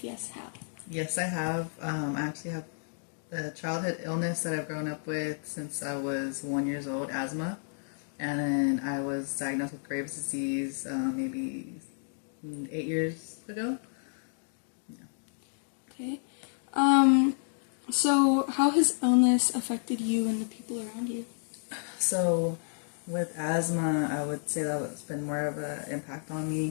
yes, how? Yes, I have. I actually have a childhood illness that I've grown up with since I was 1 year old, asthma. And then I was diagnosed with Graves' disease maybe 8 years ago. Okay. So how has illness affected you and the people around you? So with asthma, I would say that it's been more of an impact on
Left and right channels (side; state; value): right; silent; digital silence